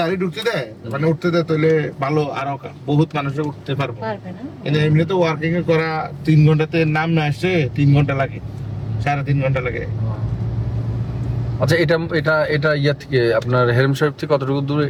ঢুকতে দেয় মানে উঠতে দেয় তাহলে ভালো, আরো বহুত মানুষে উঠতে পারবে। কিন্তু এমনিতে ওয়ার্কিং এ করা 3 ঘন্টাতে নাম না আসছে 3 ঘন্টা লাগে, 3.5 ঘন্টা লাগে। আচ্ছা এটা এটা এটা ইয়া থেকে আপনার হেরম সাহেব থেকে কতটুকু দূরে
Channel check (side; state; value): both; identical; correlation 1.00